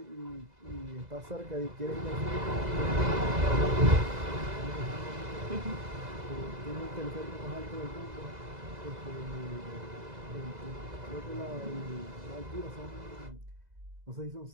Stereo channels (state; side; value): late; left; 2.0 ms